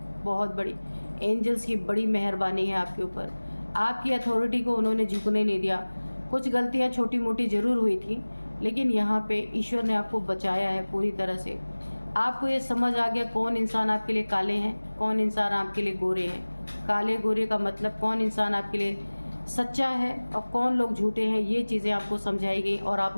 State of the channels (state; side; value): inverted; both; correlation -1.00